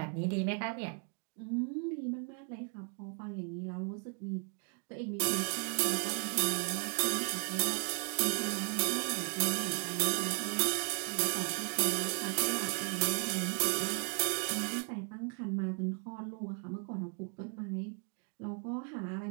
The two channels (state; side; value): quieter; left; 38.0 dB